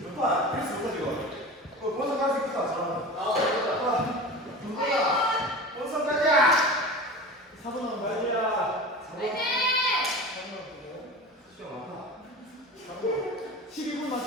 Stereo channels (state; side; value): normal; both; correlation 0.32